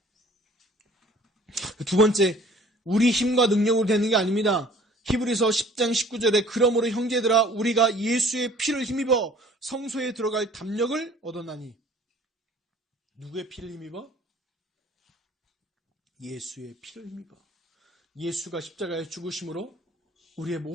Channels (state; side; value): normal; both; correlation 0.52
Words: 두 번째, 우리 힘과 능력으로 되는 게 아닙니다. 히브리서 10장 19절에 그러므로 형제들아 우리가 예수의 피를 힘입어 성소에 들어갈 담력을 얻었나니. 누구의 피를 힘입어? 예수의 피를 힘입어. 예수가 십자가에 죽으심으로 우리의